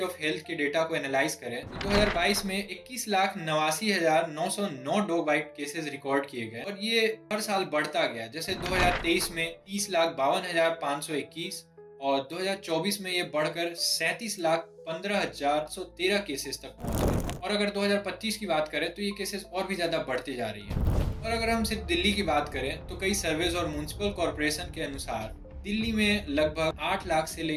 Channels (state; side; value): identical; both; correlation 1.00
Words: ऑफ हेल्थ के डेटा को एनालाइज करें तो 2022 में 21,89,909 डॉग बाइट केसेस रिकॉर्ड किए गए और ये हर साल बढ़ता गया। जैसे 2023 में 30,52,521 और 2024 में ये बढ़कर 37,15,113 केसेस तक पहुंच गए। और अगर 2025 की बात करें तो ये केसेस और भी ज्यादा बढ़ते जा रही हैं। और अगर हम सिर्फ दिल्ली की बात करें तो कई सर्वेज और म्युनिसिपल कॉर्पोरेशन के अनुसार दिल्ली में लगभग 8 लाख से